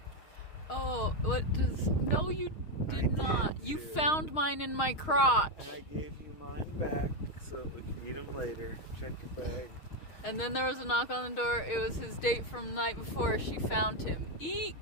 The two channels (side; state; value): right; late; 6.5 ms